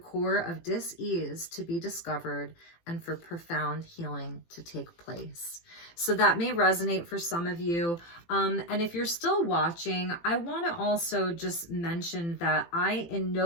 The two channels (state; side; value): late; right; 18 ms